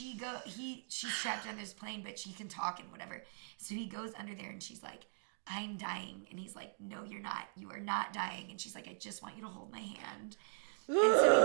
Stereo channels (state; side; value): silent; left; digital silence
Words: trapped under this plane, but she can talk and whatever. So he goes under there, and she's like, I'm dying. And he's like, no, you're not. You are not dying. And she's like, I just want you to hold my hand. And so